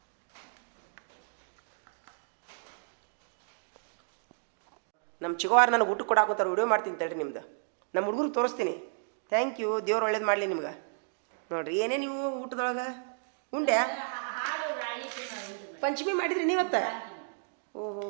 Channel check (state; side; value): silent; left; digital silence